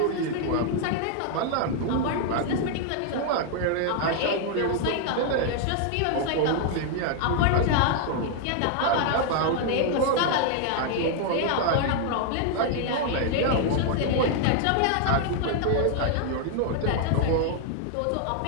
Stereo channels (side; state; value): both; different; correlation 0.00